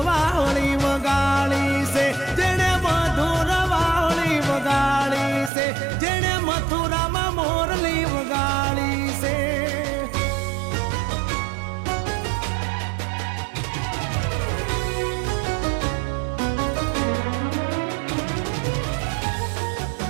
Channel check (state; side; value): drops out; left; at 5.5 s